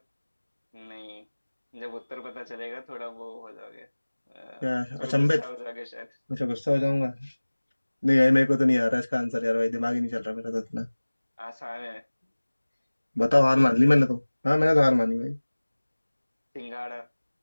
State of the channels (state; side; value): inverted; both; correlation -1.00